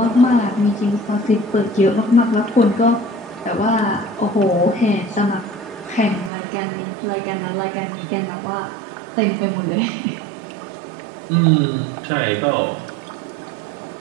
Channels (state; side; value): drops out; left; at 6.3 s